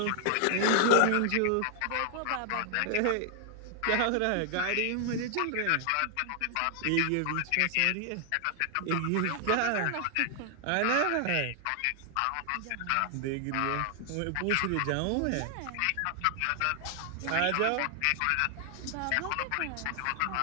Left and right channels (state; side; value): different; both; correlation 0.00